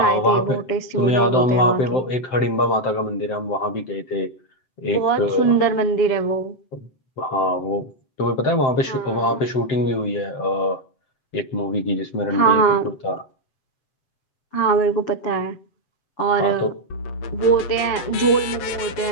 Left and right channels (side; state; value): right; late; 7.7 ms